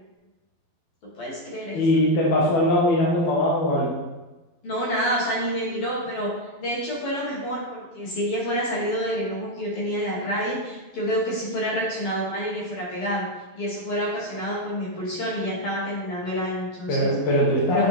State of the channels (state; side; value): late; right; 12 ms